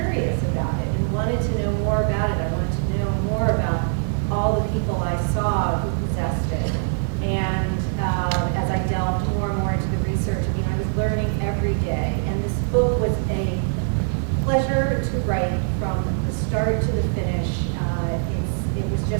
about it and wanted to know more about it. I wanted to know more about all the people I saw who possessed it. And as I delved more and more into the research, I mean, I was learning every day. And this book was a pleasure to write from the start to the finish. It was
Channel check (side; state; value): left; silent; digital silence